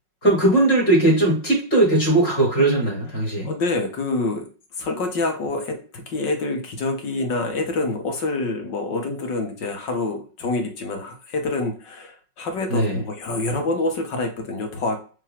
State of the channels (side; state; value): right; late; 5.4 ms